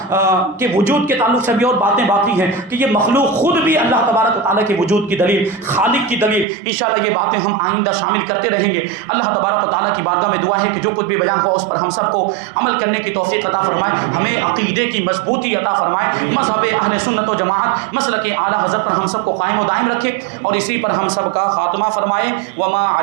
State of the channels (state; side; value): drops out; left; at 6.5 s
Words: کے وجود کے تعلق سے بھی اور باتیں باقی ہیں کہ یہ مخلوق خود بھی اللہ تبارک و تعالیٰ کے وجود کی دلیل، خالق کی دلیل، انشاءاللہ یہ باتیں ہم آئندہ شامل کرتے رہیں گے۔ اللہ تبارک و تعالیٰ کی بارگاہ میں دعا ہے کہ جو کچھ بھی بیان ہوا اس پر ہم سب کو عمل کرنے کی توفیق عطا فرمائے، ہمیں عقیدے کی مضبوطی عطا فرمائے، مذہب اہل سنت و جماعت مسلک اعلیٰ حضرت پر ہم سب کو قائم و دائم رکھے، اور اسی پر ہم سب کا خاتمہ فرمائے۔ وما